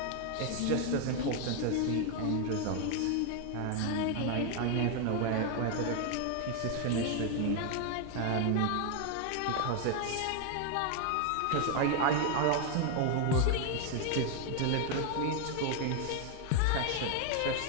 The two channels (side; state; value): both; different; correlation 0.01